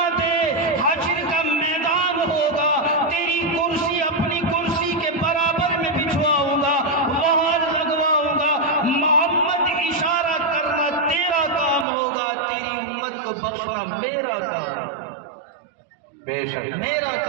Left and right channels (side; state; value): left; drops out; at 11.9 s